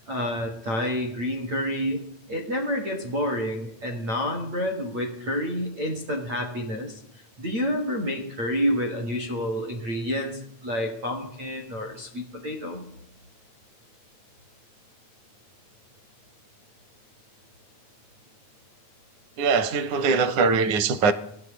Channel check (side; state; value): left; late; 9.6 ms